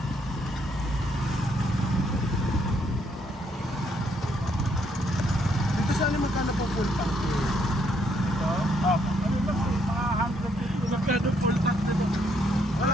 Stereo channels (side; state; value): both; normal; correlation 0.72